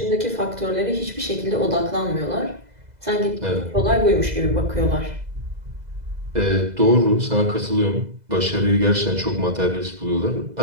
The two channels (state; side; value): late; left; 2.0 ms